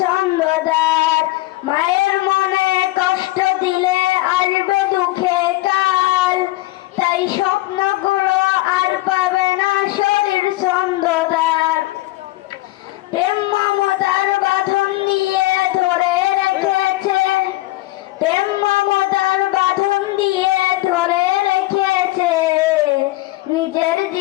ছন্দদার। মায়ের মনে কষ্ট দিলে আসবে দুঃখে কাল, তাই স্বপ্নগুলো আর পাবে না শরীর ছন্দদার। প্রেম মমতার বাঁধন দিয়ে ধরে রেখেছে, প্রেম মমতার বাঁধন দিয়ে ধরে রেখেছে। নিজের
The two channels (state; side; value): quieter; right; 19.1 dB